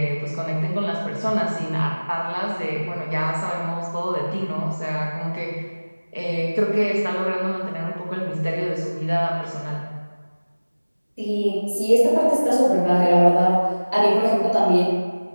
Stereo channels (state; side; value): inverted; both; correlation -1.00